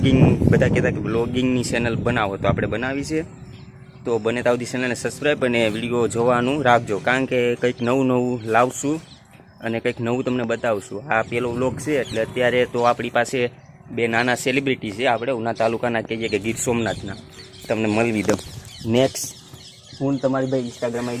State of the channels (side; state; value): both; identical; correlation 1.00